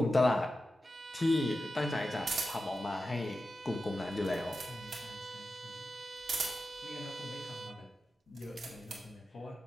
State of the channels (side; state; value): both; normal; correlation 0.92